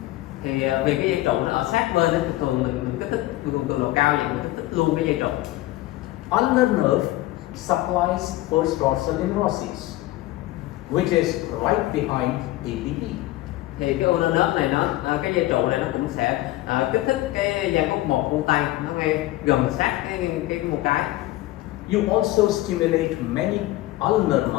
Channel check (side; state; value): right; quieter; 16.9 dB